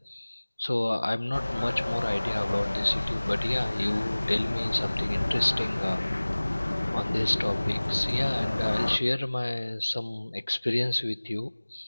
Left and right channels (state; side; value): inverted; both; correlation -1.00